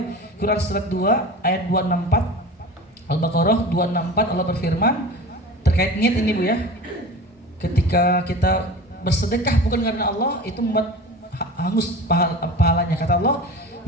Quran surat 2 ayat 264. Al-Baqarah 264 Allah berfirman terkait niat ini Bu ya. Ketika kita bersedekah bukan karena Allah, itu membuat hangus pahalanya. Kata Allah,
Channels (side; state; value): both; normal; correlation 0.35